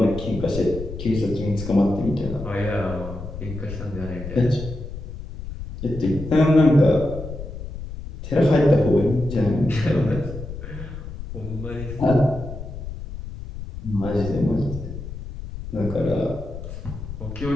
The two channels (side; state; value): left; noise; rumble, 9 dB below the sound